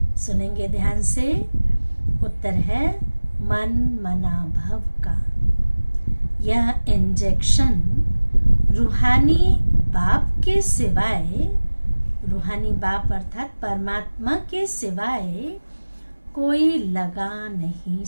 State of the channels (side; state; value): both; inverted; correlation -1.00